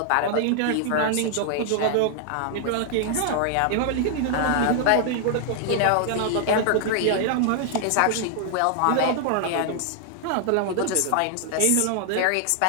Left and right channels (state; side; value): different; both; correlation -0.01